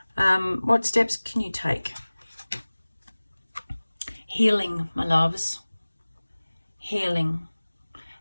What steps can you take? Healing, my loves. Healing.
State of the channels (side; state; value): both; inverted; correlation -1.00